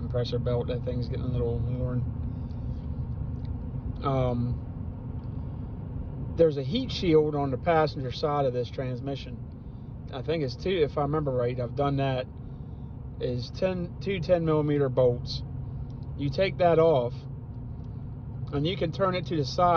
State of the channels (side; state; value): both; identical; correlation 1.00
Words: belt. That thing's getting a little worn. There's a heat shield on the passenger side of this transmission. I think it's two, if I remember right, I've done that, is two 10 millimeter bolts. You take that off and you can turn it to the